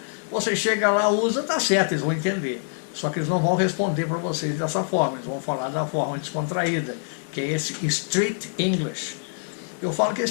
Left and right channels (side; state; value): right; silent; digital silence